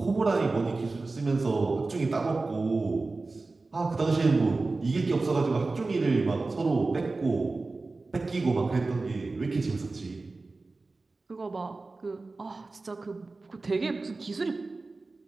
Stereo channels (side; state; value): left; quieter; 3.6 dB